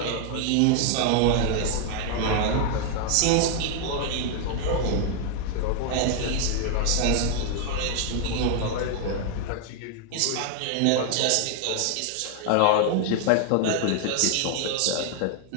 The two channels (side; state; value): both; different; correlation 0.00